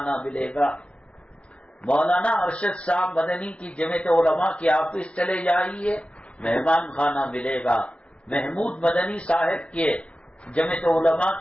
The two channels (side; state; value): right; late; 0.061 ms